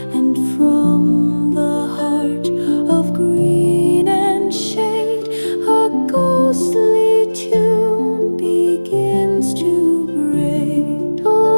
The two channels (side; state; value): both; inverted; correlation -1.00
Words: and from the heart of green and shade a ghostly tune begins to braid.